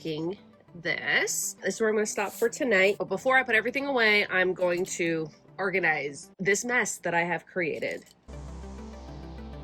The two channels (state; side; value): identical; both; correlation 1.00